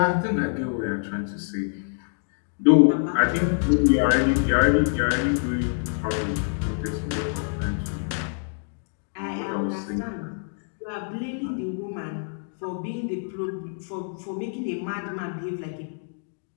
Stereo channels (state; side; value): silent; right; 61 dB below the other